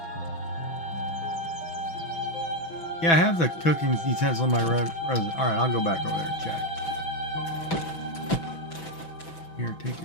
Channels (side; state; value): right; late; 6.0 ms